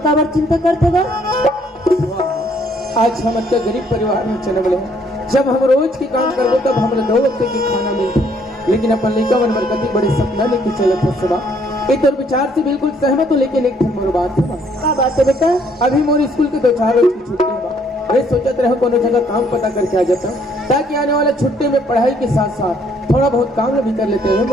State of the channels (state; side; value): normal; both; correlation 0.66